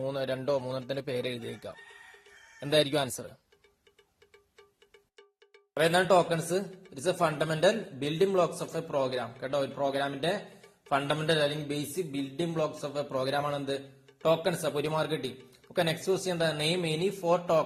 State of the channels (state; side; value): identical; both; correlation 1.00